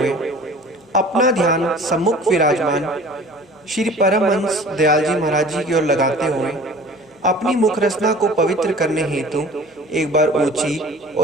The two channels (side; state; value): both; normal; correlation 0.45